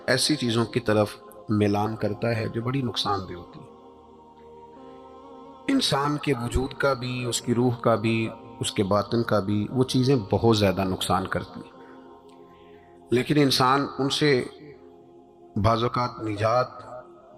ایسی چیزوں کی طرف میلان کرتا ہے جو بڑی نقصان دہ ہوتی ہے۔ انسان کے وجود کا بھی، اس کی روح کا بھی، اس کے باطن کا بھی، وہ چیزیں بہت زیادہ نقصان کرتی ہیں۔ لیکن انسان ان سے بعض اوقات نجات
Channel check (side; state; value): both; identical; correlation 1.00